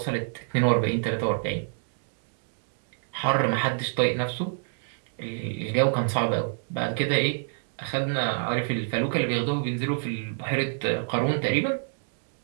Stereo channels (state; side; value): silent; left; digital silence